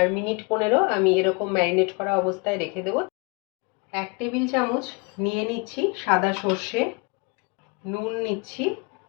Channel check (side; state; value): right; quieter; 30.7 dB